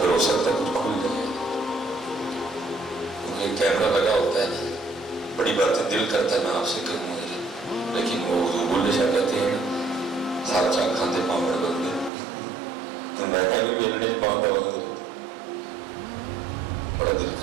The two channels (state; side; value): drops out; left; at 12.1 s